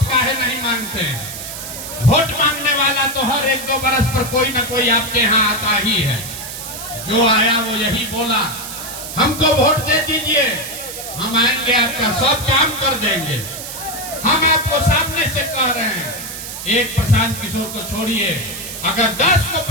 काहे नहीं मांगते हैं? वोट मांगने वाला तो हर 1-2 बरस पर कोई ना कोई आपके यहाँ आता ही है। जो आया वो यही बोला, हमको वोट दे दीजिए, हम आएंगे आपका सब काम कर देंगे। हम आपको सामने से कह रहे हैं, एक प्रशांत किशोर को छोड़िए, अगर 10 को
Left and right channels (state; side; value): noise; right; hiss, 9 dB below the sound